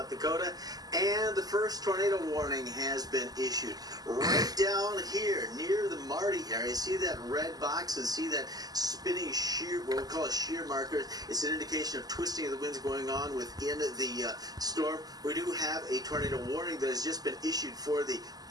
Dakota, and the first tornado warning has been issued. Right down here near the Marty area, see that red box and see that spinning shear, what we call a shear marker. It's an indication of twisting of the winds going on within the storm. We do have a tornado warning that has just been issued for the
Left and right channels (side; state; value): left; late; 0.18 ms